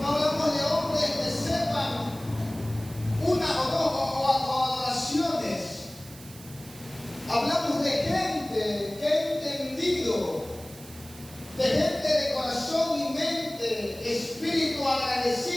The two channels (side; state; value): right; noise; hiss, 19 dB below the sound